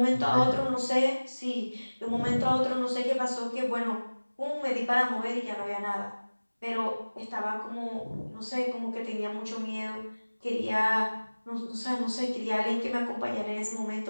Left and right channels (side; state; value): both; inverted; correlation -1.00